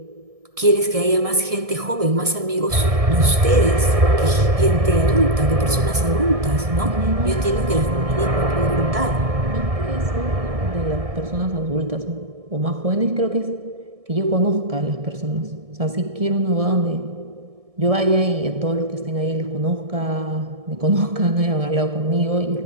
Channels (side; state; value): left; late; 1.7 ms